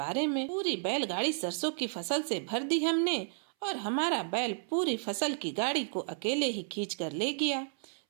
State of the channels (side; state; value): left; silent; 56 dB below the other